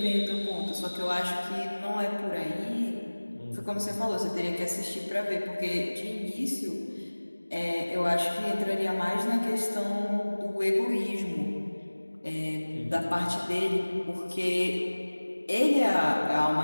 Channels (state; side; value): inverted; both; correlation -1.00